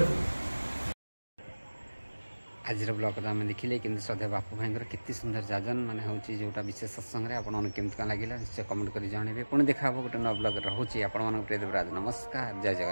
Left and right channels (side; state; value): both; inverted; correlation -1.00